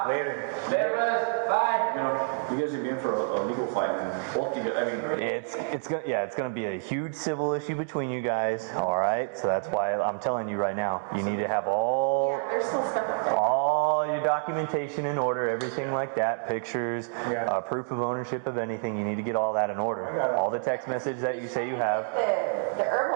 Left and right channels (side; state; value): left; silent; digital silence